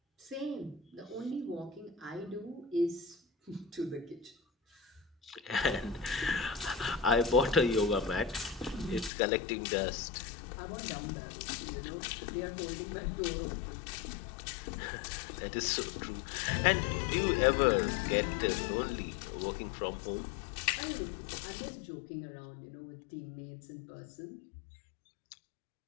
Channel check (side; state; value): right; drops out; at 9.1 s